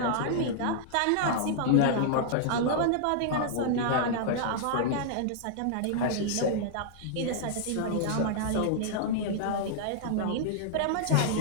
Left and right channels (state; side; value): different; both; correlation -0.01